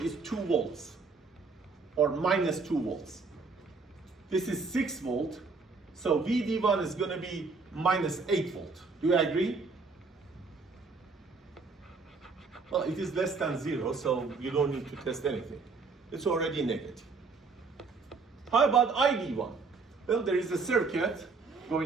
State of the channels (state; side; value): quieter; left; 4.4 dB